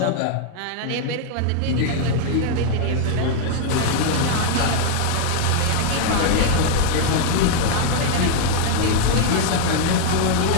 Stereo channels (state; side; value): different; both; correlation 0.00